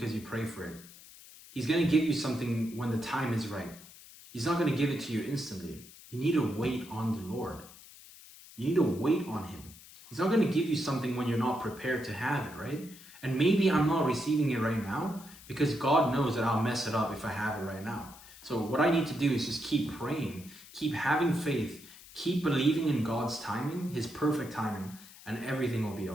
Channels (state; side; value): noise; left; hiss, 19 dB below the sound